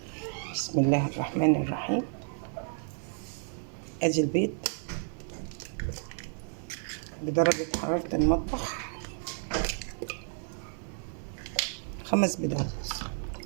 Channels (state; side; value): silent; left; 57 dB below the other